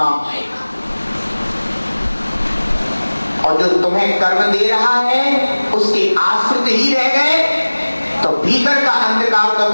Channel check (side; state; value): both; inverted; correlation -1.00